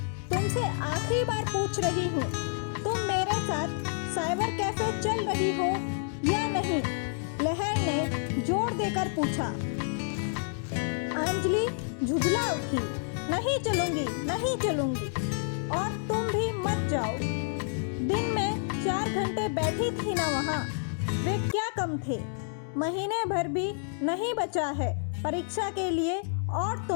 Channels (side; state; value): right; silent; digital silence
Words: तुमसे आखिरी बार पूछ रही हूँ, तुम मेरे साथ साइबर कैफे चल रही हो या नहीं? लहर ने जोर देकर पूछा। अंजलि झुंझला उठी। नहीं चलूंगी और तुम भी मत जाओ। दिन में 4 घंटे बैठी थी ना वहाँ, वे क्या कम थे? महीने भर भी नहीं बचा है परीक्षा के लिए और